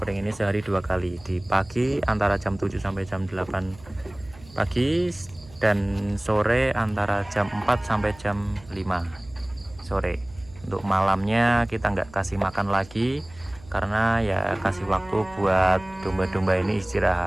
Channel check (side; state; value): right; noise; hum, 22 dB below the sound